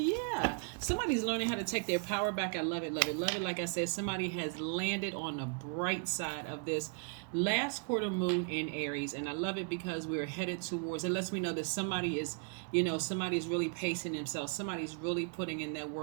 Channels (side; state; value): left; quieter; 38.9 dB